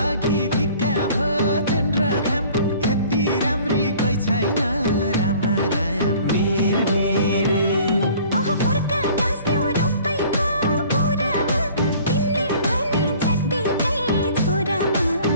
अघि फिक्का भो जुन र घाम यति राम्री कोही छैन रामा राम मिरमिरे ओह फर्का गाँस्यौ रूपैको कुरामा तिमीले भने जत्तिकै छोरामा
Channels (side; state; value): both; inverted; correlation -0.51